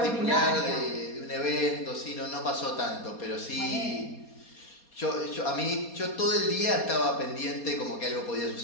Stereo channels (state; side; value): late; right; 4.2 ms